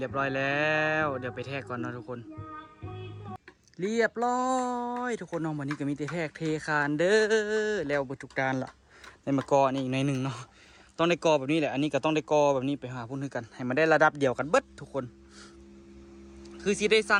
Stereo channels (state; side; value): identical; both; correlation 1.00